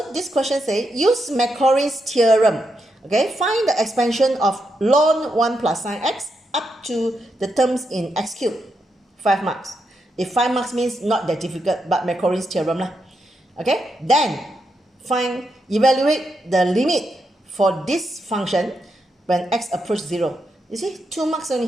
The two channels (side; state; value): both; normal; correlation 0.83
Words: this question says, use Maclaurin's theorem. Okay, find the expansion of ln 1 plus sine x up to the terms in x cubed. 5 marks. If 5 marks means not that difficult, but Maclaurin's theorem lah. Okay, then evaluate the limit for this function when x approach 0. You see, 2 marks